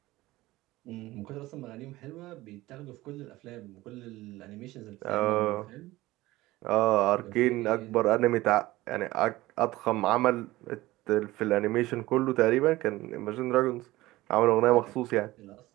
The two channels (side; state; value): left; quieter; 18.2 dB